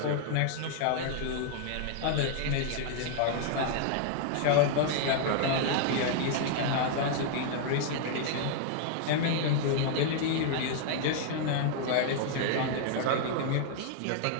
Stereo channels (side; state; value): both; different; correlation 0.00